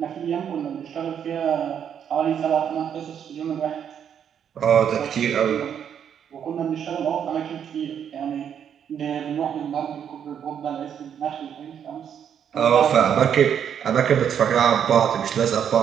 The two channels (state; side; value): quieter; left; 8.5 dB